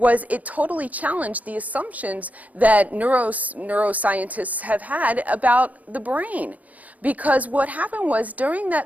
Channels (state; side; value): late; left; 0.075 ms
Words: it totally challenged the assumptions that neuroscientists have had about the brain. Because what happened was during